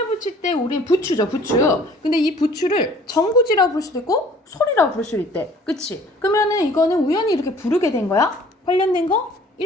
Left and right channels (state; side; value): normal; both; correlation 0.53